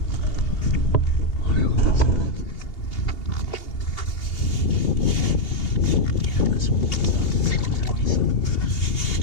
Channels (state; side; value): late; right; 2.8 ms